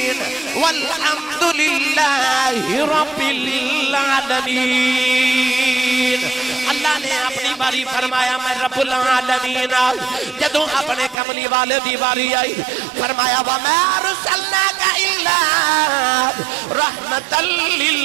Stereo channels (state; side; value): drops out; left; at 11.2 s